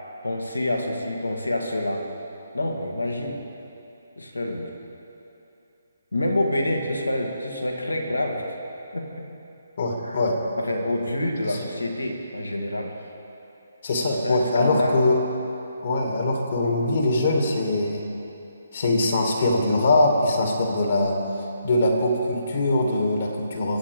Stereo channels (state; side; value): inverted; both; correlation -0.78